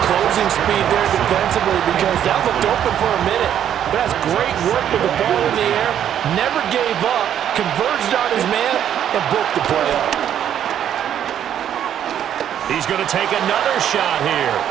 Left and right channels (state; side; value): quieter; left; 9.9 dB